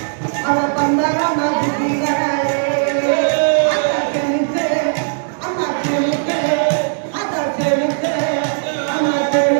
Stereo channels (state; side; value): silent; left; 68 dB below the other